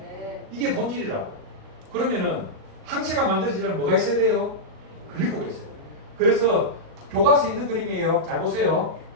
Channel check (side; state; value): left; late; 37 ms